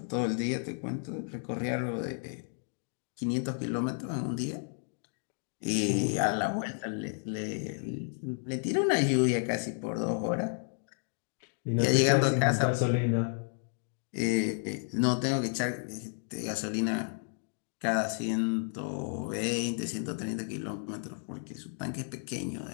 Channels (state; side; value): silent; right; 56 dB below the other